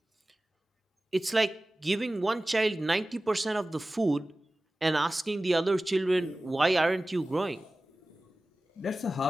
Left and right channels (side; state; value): both; normal; correlation 0.97